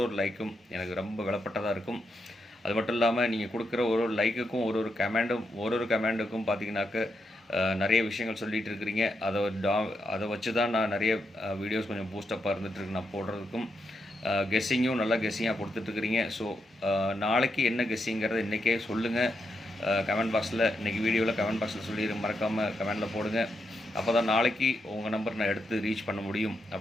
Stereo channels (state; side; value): normal; both; correlation 0.83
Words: லைக்கும் எனக்கு ரொம்ப விலைப்பட்டதாக இருக்கும். அது மட்டும் இல்லாமல் நீங்கள் கொடுக்குற ஒரு லைக்குக்கும் ஒரு கமெண்டுக்கும் பார்த்தீங்கன்னாக்க நிறைய விஷயங்கள் சொல்லிகிட்டு இருக்கிறீங்க. அதை வச்சு தான் நான் நிறைய வீடியோஸ் கொஞ்சம் பூஸ்டப்பாக இருந்துகிட்ருக்கு நான் போடுறதுக்கும். கெஸ்ஸிங்கும் நல்லா கெஸ்ஸிங்காக கொடுத்துட்ருக்குறீங்க. ஸோ நாளைக்கு என்ன கெஸ்ஸிங்கிறத இன்றைக்கே சொல்லுங்கள். கமெண்ட் பாக்ஸில் இன்றைக்கி வீடியோவில் கமெண்ட் பாக்ஸில் சொல்லிடுங்க. மறக்காமல் கமெண்டில் போடுங்க. அப்போ தான் நாளைக்கு உங்கள் நம்பர் நான் எடுத்து ரீச் பண்ண முடியும்